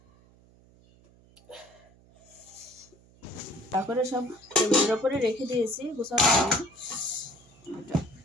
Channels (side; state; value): right; noise; hum, 27 dB below the sound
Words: তারপরে সব টেবিলের ওপরে রেখে দিয়েছি গোছানো হয়নি।